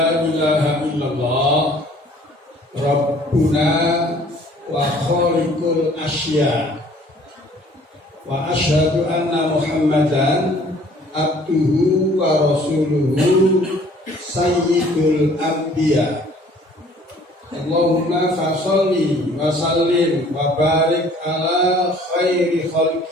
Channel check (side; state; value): both; normal; correlation 0.55